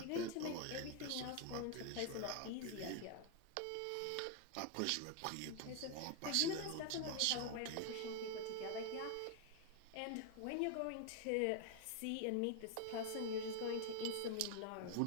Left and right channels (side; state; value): both; different; correlation 0.00